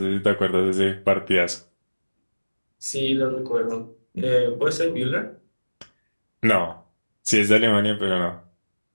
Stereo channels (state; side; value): inverted; both; correlation -1.00